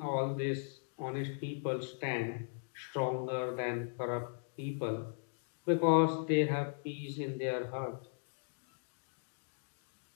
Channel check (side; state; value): right; silent; digital silence